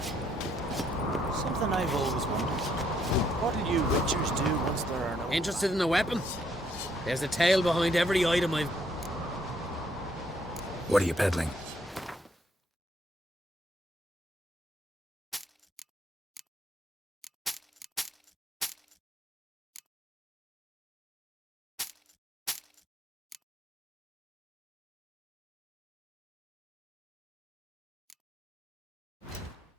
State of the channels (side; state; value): both; normal; correlation 0.70